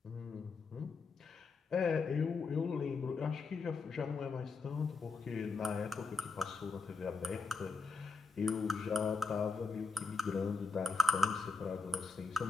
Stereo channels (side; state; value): right; quieter; 4.4 dB